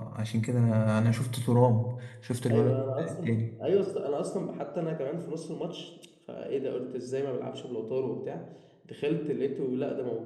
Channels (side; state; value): both; identical; correlation 1.00